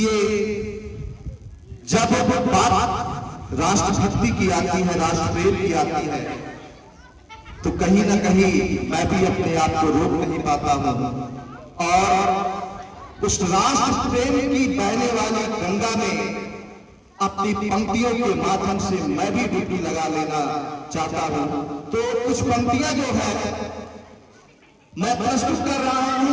जब बात राष्ट्रभक्ति की आती है, राष्ट्रप्रेम की आती है, तो कहीं ना कहीं मैं भी अपने आप को रोक नहीं पाता हूं और उस राष्ट्र प्रेम की बहने वाली गंगा में अपनी पंक्तियों के माध्यम से मैं भी डुबकी लगा लेना चाहता हूं। तो कुछ पंक्तियां जो है मैं प्रस्तुत कर रहा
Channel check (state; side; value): identical; both; correlation 1.00